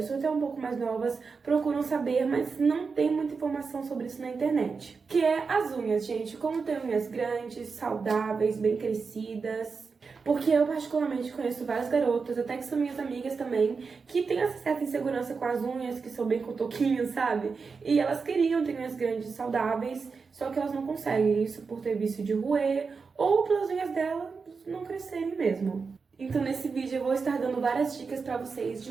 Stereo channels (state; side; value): quieter; left; 5.0 dB